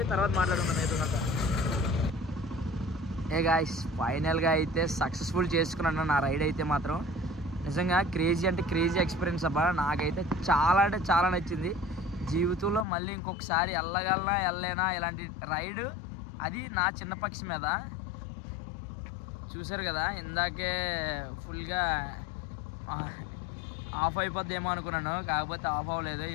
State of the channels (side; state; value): right; drops out; at 12.9 s